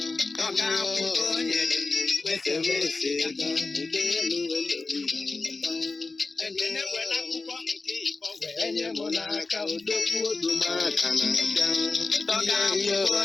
ọga akwụkwọ nyere m kwesịrị ose ga udenu wẹ̀lú máa bọ́n ekele were akwụkwọ nke ịkpọ wee nye m n'aka odogwu odumaka na-abịa ọga akwụkwọ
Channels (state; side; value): quieter; right; 3.7 dB